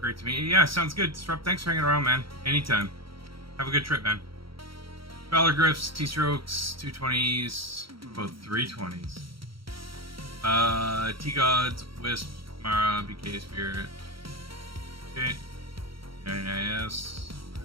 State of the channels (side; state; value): left; late; 0.74 ms